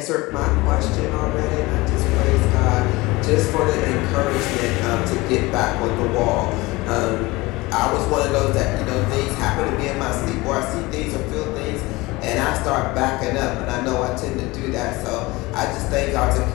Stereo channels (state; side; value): quieter; right; 21.8 dB